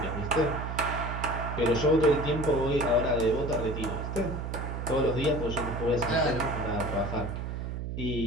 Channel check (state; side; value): noise; right; hum, 5 dB below the sound